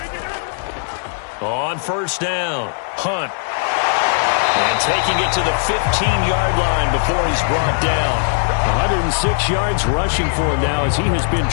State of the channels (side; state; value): right; silent; digital silence